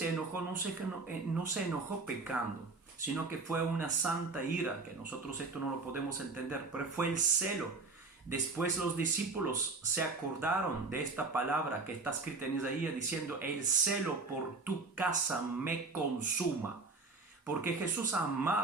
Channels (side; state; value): left; quieter; 3.9 dB